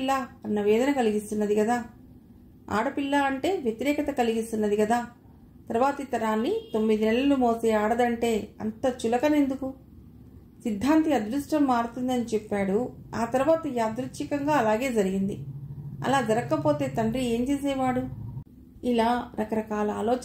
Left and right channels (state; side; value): identical; both; correlation 1.00